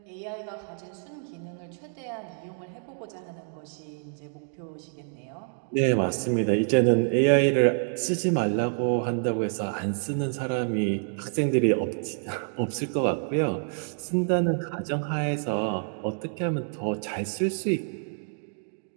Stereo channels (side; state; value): left; silent; 60 dB below the other